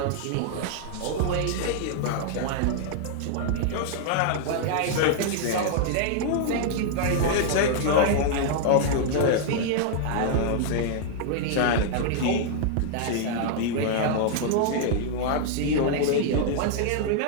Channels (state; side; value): different; both; correlation -0.01